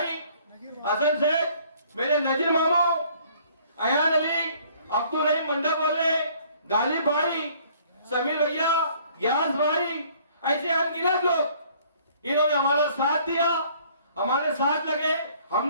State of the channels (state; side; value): inverted; both; correlation -0.58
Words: हसन सेठ, मेरे नजीर मामू, अयान अली, अब्दुल रहीम मंडप वाले, गालिब भाई, समीर भैया, ग्यास भाई, ऐसे अनगिनत लोग इन्होंने हमारा साथ दिया, हमारे साथ लगे।